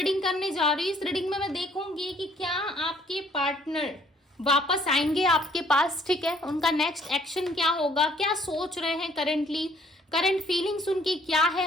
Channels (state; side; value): normal; both; correlation 0.62